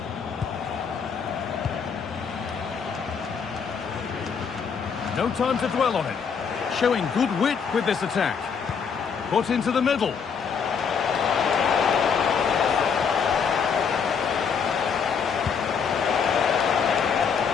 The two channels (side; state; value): right; quieter; 6.4 dB